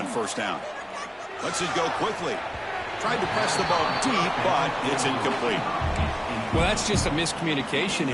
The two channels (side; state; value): both; identical; correlation 1.00